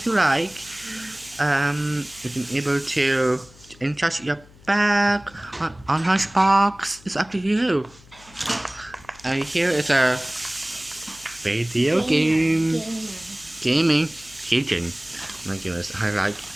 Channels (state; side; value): noise; left; hum, 24 dB below the sound